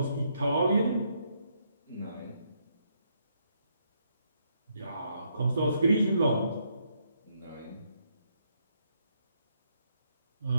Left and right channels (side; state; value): both; inverted; correlation -0.75